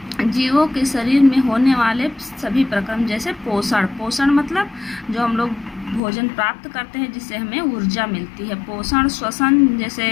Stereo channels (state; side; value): drops out; right; at 6.0 s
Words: जीवों के शरीर में होने वाले सभी प्रक्रम जैसे पोषण मतलब जो हम लोग भोजन प्राप्त करते हैं जिससे हमें ऊर्जा मिलती है। पोषण, श्वसन जैसे